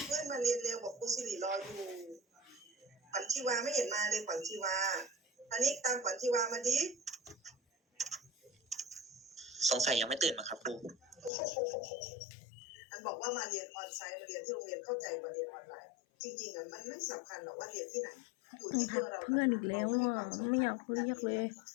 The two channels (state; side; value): drops out; right; at 11.3 s